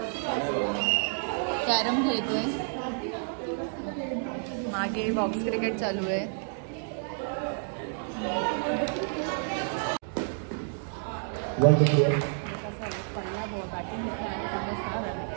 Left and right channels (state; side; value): silent; left; 56 dB below the other